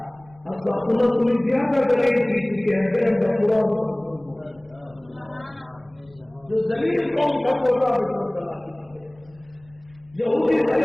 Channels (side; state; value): left; noise; rumble, 28 dB below the sound